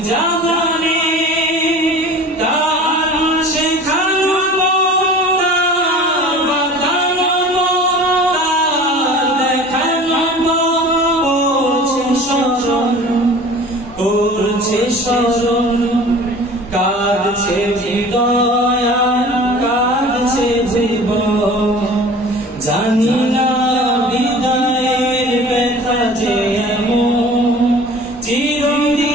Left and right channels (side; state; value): both; normal; correlation 0.42